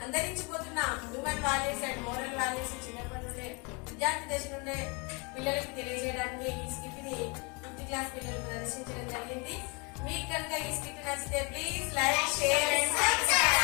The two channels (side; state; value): right; quieter; 30.9 dB